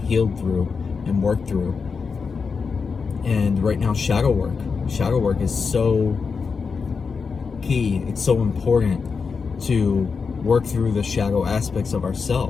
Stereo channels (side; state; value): right; quieter; 5.3 dB